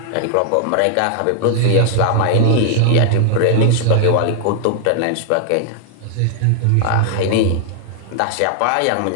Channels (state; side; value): different; both; correlation 0.00